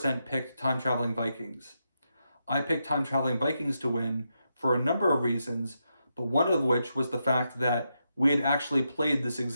picked Time Traveling Vikings. I picked Time Traveling Vikings to win for a number of reasons, but one of which was the fact that we had actually played this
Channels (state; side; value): inverted; both; correlation -0.84